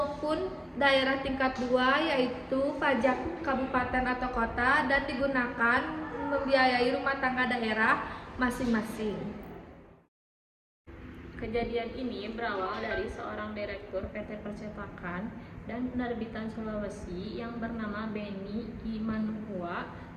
daerah tingkat 2 yaitu pajak kabupaten atau kota, dan digunakan membiayai rumah tangga daerah masing-masing. Kejadian ini berawal dari seorang direktur PT Percetakan dan Penerbitan Sulawesi yang bernama Benny Imanhua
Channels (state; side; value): identical; both; correlation 1.00